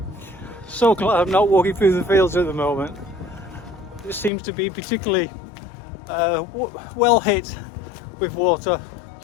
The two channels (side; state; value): right; drops out; at 4.3 s